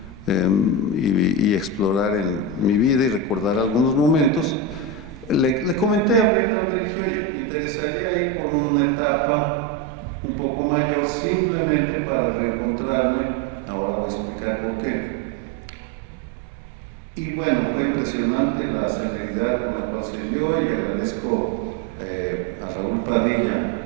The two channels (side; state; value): left; drops out; at 6.3 s